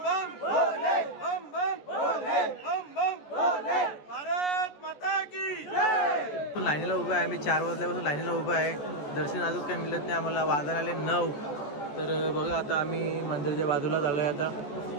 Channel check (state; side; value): late; right; 14 ms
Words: बम भोले, बम बम भोले, बम बम भोले, भारत माता की जय. लाईनीला उभा आहे आम्ही, 4 वाजल्यापासून लाईनीला उभा आहे. दर्शन अजून काही मिळत नाही आम्हाला, वाजायला आले 9. तर बघा आता आम्ही मंदिरच्या बाजूला चाललोय आता,